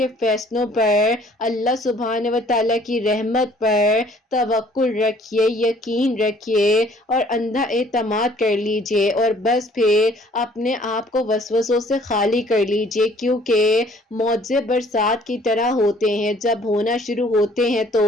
فیصلوں پر، اللہ سبحانہ و تعالیٰ کی رحمت پر توکل رکھیے، یقین رکھیے اور اندھا اعتماد کر لیجئے اور بس پھر اپنے آپ کو وسوسوں سے خالی کر لیجئے، کیونکہ معجزے برسات کی طرح ہوتے ہیں، جب ہونا شروع ہوتے ہیں تو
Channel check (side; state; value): both; normal; correlation 0.57